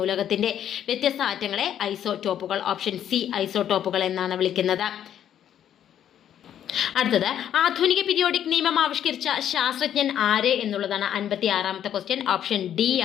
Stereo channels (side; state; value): right; quieter; 10.1 dB